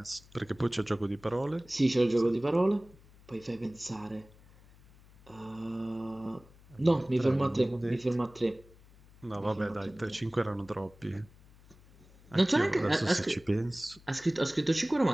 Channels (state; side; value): noise; left; hum, 25 dB below the sound